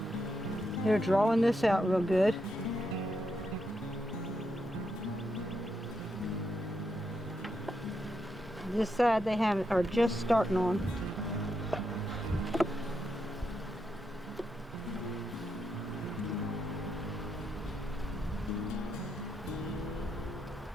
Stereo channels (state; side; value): normal; both; correlation 0.82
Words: They're drawing this out real good. This side they are just starting on.